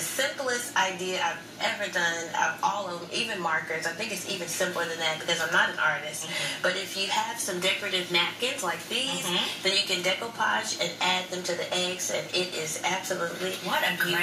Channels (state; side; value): identical; both; correlation 1.00